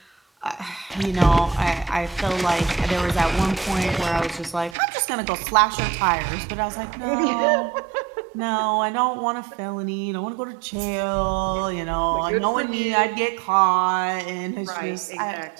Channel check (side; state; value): left; drops out; at 4.8 s